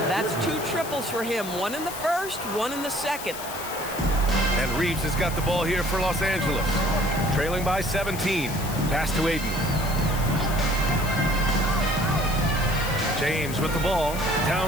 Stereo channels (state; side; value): noise; left; hiss, 10 dB below the sound